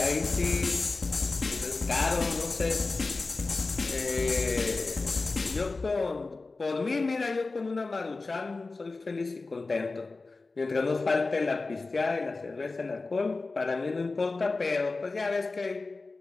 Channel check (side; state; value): right; quieter; 3.6 dB